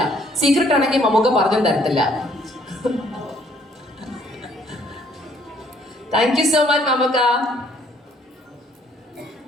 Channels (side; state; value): both; normal; correlation 0.63